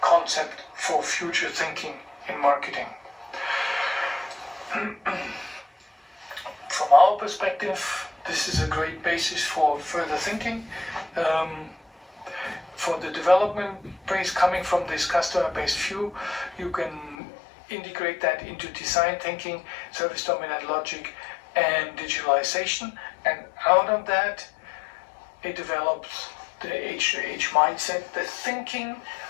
concept for future thinking in marketing. From our perspective, this is a great basis for further thinking. For the development base coming from this customer-based view, you can integrate that into design thinking, service dominant logic, and digitalization, and out of that it develops the H2H mindset, the thinking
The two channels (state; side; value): drops out; right; at 17.2 s